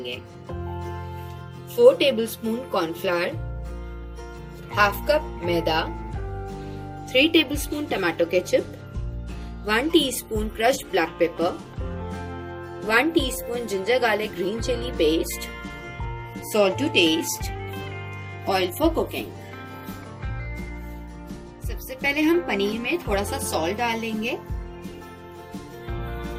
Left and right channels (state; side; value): identical; both; correlation 1.00